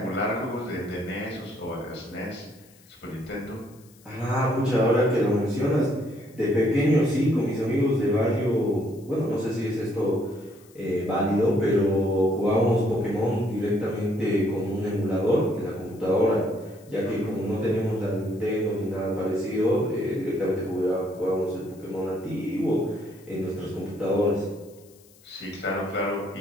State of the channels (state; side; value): noise; left; hiss, 27 dB below the sound